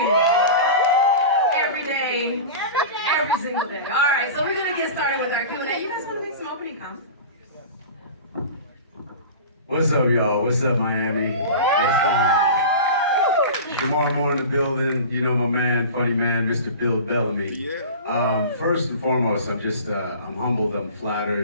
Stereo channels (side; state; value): both; inverted; correlation -0.33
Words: Every day, every single day. All right, so we're gonna get started with our Q&A. You guys want to make some opening comments? What's up, y'all? What's up, Miami? Shemar Moore in the building. You know my man, funny man, Mr. Bill Bellamy. First and foremost, I'm humbled, I'm